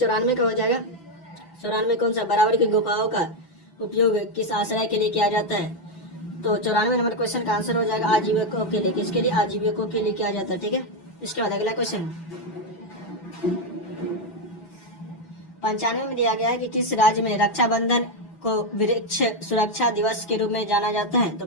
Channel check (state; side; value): late; right; 6.0 ms